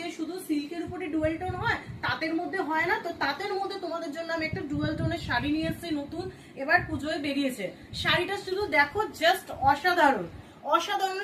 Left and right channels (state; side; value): identical; both; correlation 1.00